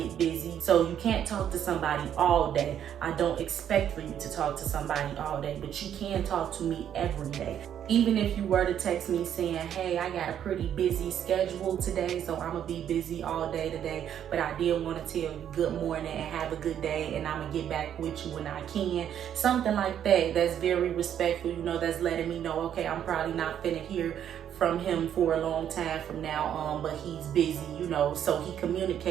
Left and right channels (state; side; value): quieter; left; 9.7 dB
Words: busy. So you can't talk to somebody all day. I don't expect for you to talk to somebody all day, but you can talk to me every day. Even if you were to text me saying, hey, I got a pretty busy schedule today, so I'm going to be busy all day today, but I did want to tell you good morning and have a good day, and I'm going to get back with you when I can. Something like that, that's very respectful, that's letting me know, okay, I'm probably not finna hear from him for a long time from now on, but he's busy, so he